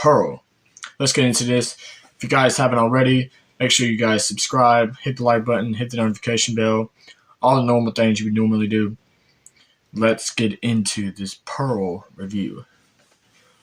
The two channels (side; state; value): both; identical; correlation 1.00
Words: Let's get into this. If you guys haven't already, make sure you guys subscribe, hit the like button, hit the notification bell, all the normal things you would normally do. Let's get into this Pearl review.